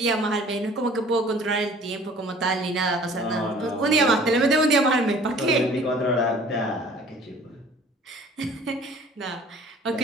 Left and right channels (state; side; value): normal; both; correlation 0.50